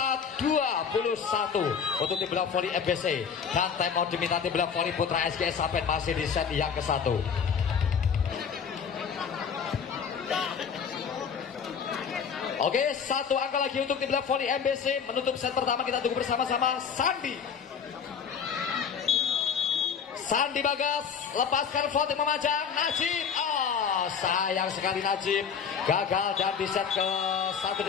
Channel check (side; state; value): right; quieter; 6.8 dB